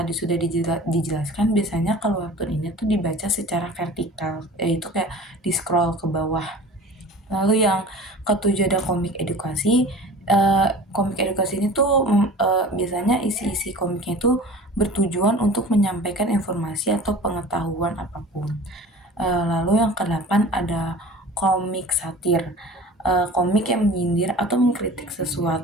sudah dijelaskan, biasanya kalau webtoon ini tuh dibaca secara vertikal, yaitu kayak di scroll ke bawah. Lalu yang ketujuh ada komik edukasi. Komik edukasi ini tuh biasanya isi-isi komiknya itu bertujuan untuk menyampaikan informasi atau pengetahuan apapun. Lalu yang kedelapan ada komik satir. Komik yang menyindir atau mengkritik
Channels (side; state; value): both; normal; correlation 0.41